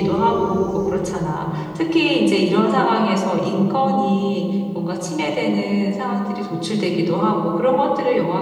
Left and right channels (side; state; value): both; identical; correlation 1.00